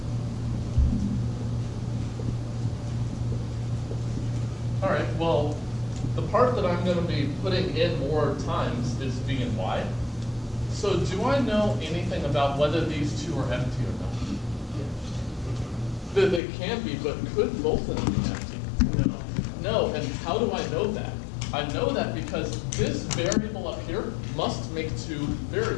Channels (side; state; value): right; drops out; at 16.4 s